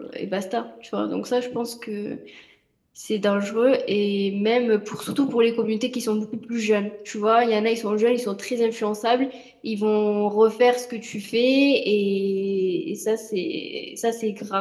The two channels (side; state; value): both; identical; correlation 1.00